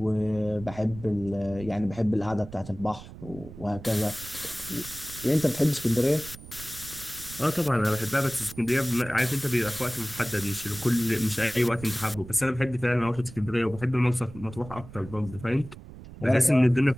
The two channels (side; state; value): right; noise; rumble, 15 dB below the sound